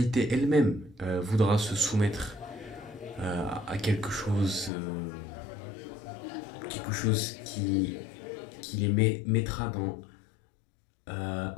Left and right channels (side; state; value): right; drops out; at 4.7 s